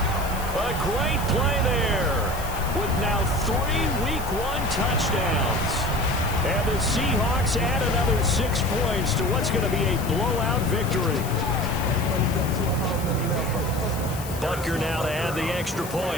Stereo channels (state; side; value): noise; left; hiss, 13 dB below the sound